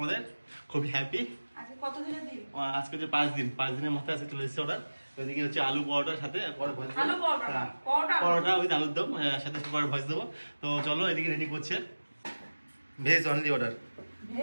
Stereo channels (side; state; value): both; inverted; correlation -1.00